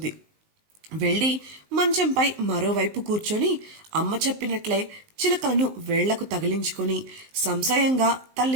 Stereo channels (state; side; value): late; left; 19 ms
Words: వెళ్ళి మంచంపై మరోవైపు కూర్చొని అమ్మ చెప్పినట్లే చిలకలను వేళ్లకు తగిలించుకొని సంశయంగా